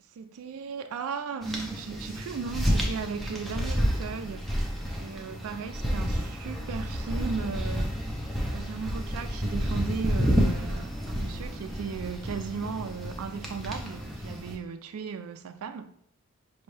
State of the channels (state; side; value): normal; both; correlation 0.79